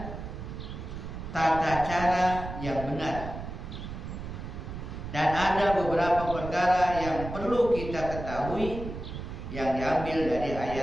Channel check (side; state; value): right; noise; rumble, 8 dB below the sound